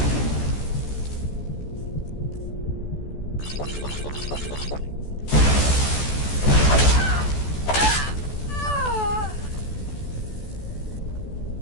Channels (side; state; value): right; late; 14 ms